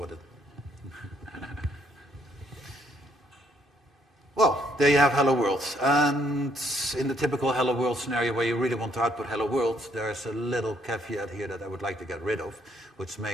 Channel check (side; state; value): both; normal; correlation 0.69